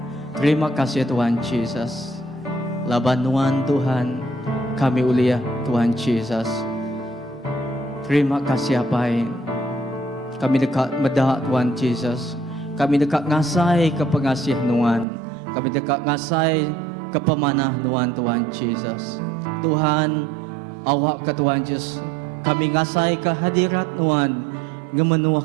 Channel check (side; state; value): left; drops out; at 15.1 s